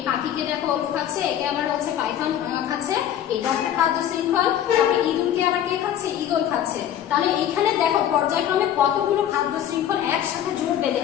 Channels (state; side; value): quieter; right; 10.6 dB